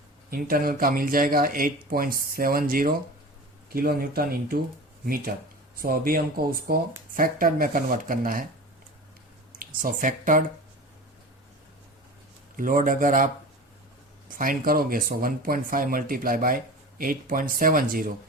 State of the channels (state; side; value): normal; both; correlation 0.34